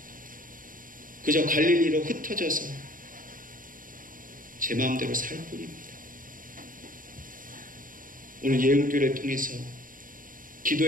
그저 갈릴리로 흩어져서 제 마음대로 살 뿐입니다. 오늘 예은교회를 통해서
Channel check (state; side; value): late; left; 0.40 ms